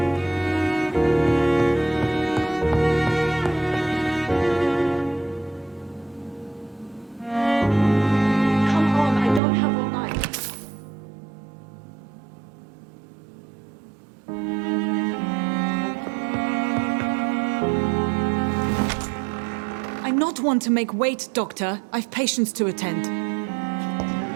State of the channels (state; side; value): drops out; left; at 9.4 s